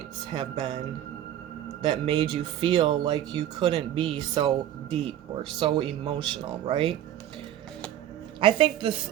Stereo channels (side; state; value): left; quieter; 11.8 dB